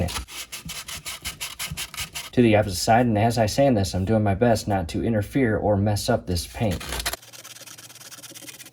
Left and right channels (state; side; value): identical; both; correlation 1.00